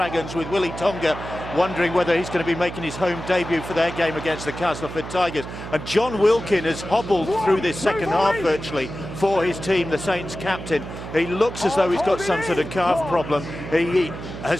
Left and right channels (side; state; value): right; noise; hum, 10 dB below the sound